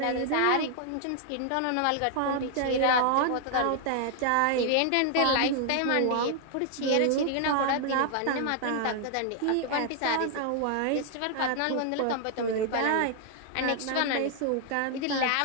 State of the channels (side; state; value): both; different; correlation 0.00